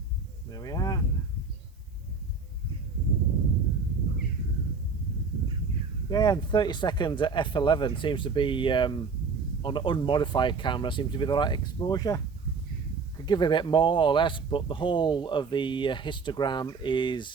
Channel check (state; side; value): quieter; left; 4.7 dB